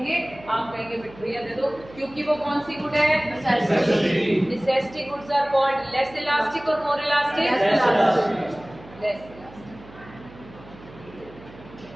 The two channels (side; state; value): right; noise; hum, 20 dB below the sound